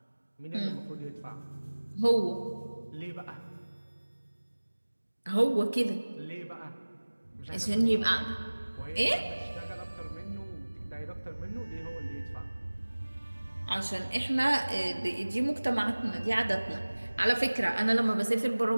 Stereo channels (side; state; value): both; inverted; correlation -1.00